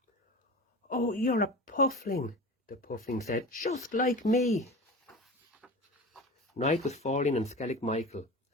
"Oh, you're a puffling," the puffling said, "just like me." Night was falling on Skellig Michael,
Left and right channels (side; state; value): both; normal; correlation 0.32